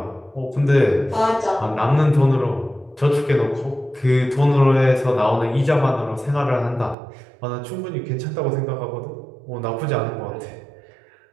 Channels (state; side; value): drops out; left; at 7.0 s